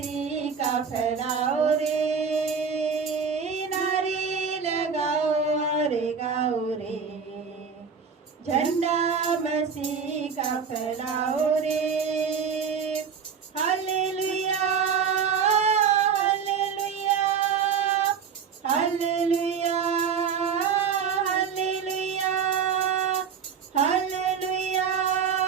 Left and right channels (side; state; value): left; quieter; 6.5 dB